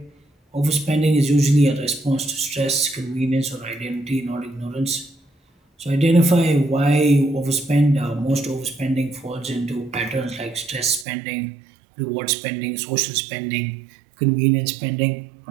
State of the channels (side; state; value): left; drops out; at 11.1 s